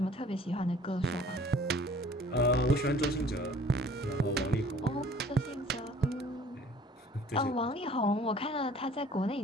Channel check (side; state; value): both; normal; correlation 0.52